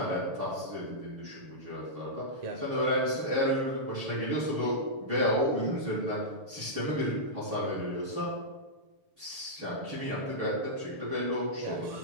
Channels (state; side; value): late; left; 6.9 ms